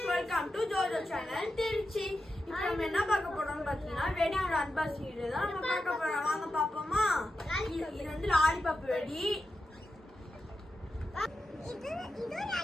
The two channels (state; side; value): normal; both; correlation 0.90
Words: Welcome to Jojo channel Trichy. இப்போ நம்ம என்ன பார்க்க போறோம்னு பார்த்தீங்கன்னா வெடியோட அன்பாக்சிங் வீடியோ தான் நம்ம பார்க்க போறோம். வாங்க பாப்போமா. இது வந்து லாலிபாப் வெடி. இது